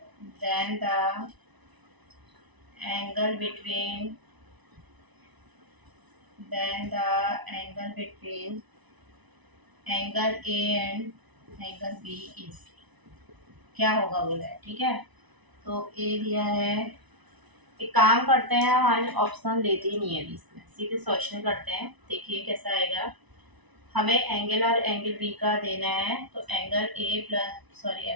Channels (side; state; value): left; late; 1.0 ms